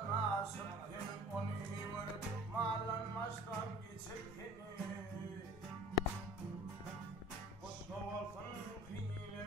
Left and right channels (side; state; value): both; normal; correlation 0.45